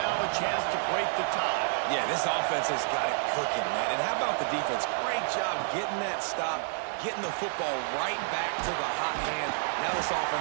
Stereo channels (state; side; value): silent; left; 56 dB below the other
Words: a chance to break the tie. Yeah, this offense has got it cooking, man. And how about the defense? Great job getting that stop, getting the football right back to the hot hand. Now this